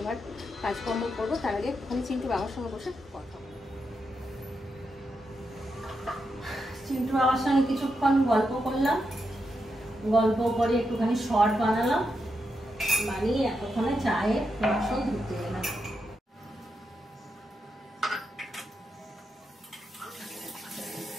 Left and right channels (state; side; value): normal; both; correlation 0.84